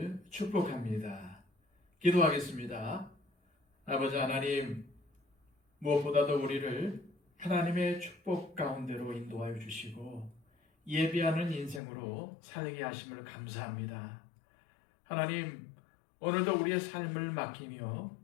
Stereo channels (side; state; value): right; drops out; at 11.8 s